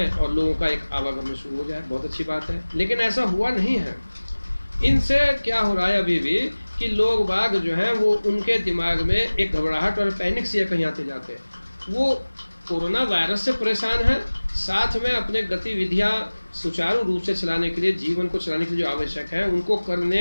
और लोगों का एक आवागमन शुरू हो जाए, बहुत अच्छी बात है। लेकिन ऐसा हुआ नहीं है। इनसे क्या हो रहा है अभी भी कि लोग बाग जो हैं वो उनके दिमाग में एक घबराहट और पैनिक से कहीं आते जाते हैं। वो कोरोना वायरस से परेशान है, साथ में अपने गतिविधियां सुचारू रूप से चलाने के लिए, जीवन को चलाने के लिए जो आवश्यक है, उनको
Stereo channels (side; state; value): both; inverted; correlation -1.00